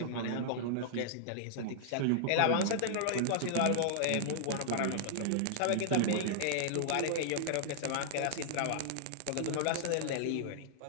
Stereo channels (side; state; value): both; different; correlation -0.01